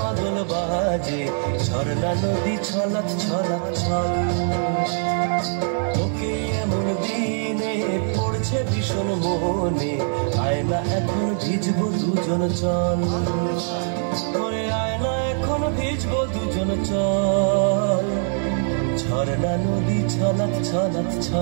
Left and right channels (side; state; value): left; silent; 64 dB below the other